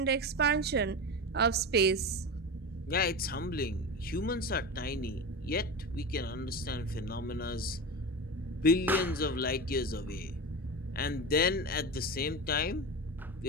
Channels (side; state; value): both; normal; correlation 0.24